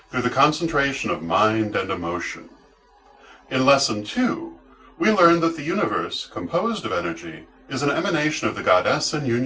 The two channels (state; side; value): identical; both; correlation 1.00